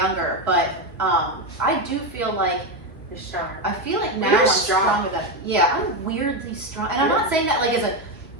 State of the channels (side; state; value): both; normal; correlation 0.11